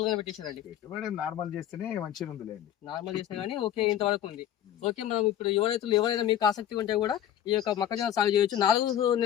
గానే పెట్టేశారండి? పెట్టుబడి నార్మల్ చేస్తేనే మంచిగా ఉంది. నార్మల్ చేసినా కానీ ఓకే, ఇంతవరకు ఉంది. ఓకే. మనం ఇప్పుడు యువ రైతులు ఎవరైనా మీకు ఆసక్తి ఉంటే కూడా ఈ యొక్క మొక్కజొన్న సాగు చేయొచ్చు. 4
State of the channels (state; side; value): quieter; right; 10.9 dB